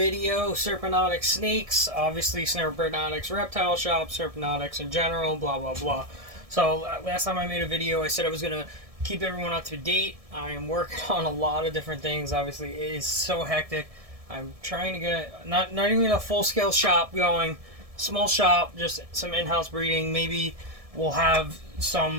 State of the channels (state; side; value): late; left; 1.7 ms